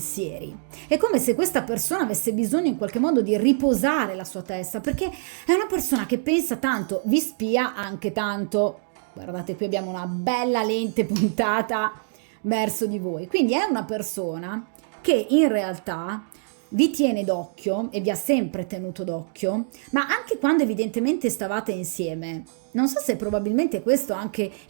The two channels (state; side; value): silent; left; digital silence